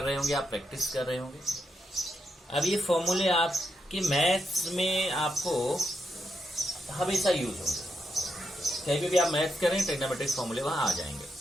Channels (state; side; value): normal; both; correlation 0.83